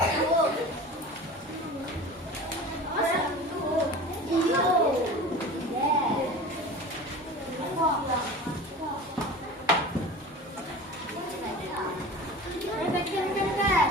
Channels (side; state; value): both; normal; correlation 0.36